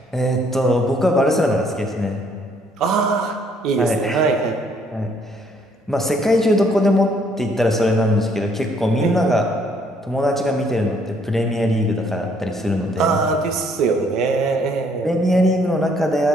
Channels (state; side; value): normal; both; correlation 0.65